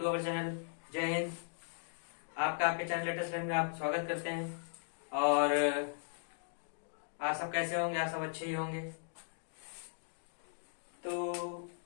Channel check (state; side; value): silent; right; digital silence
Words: our channel. जय हिंद। आपका आपके चैनल लेटेस्ट लर्न में आप स्वागत करते हैं। और आप सब कैसे होंगे? आप सब अच्छे ही होंगे। तो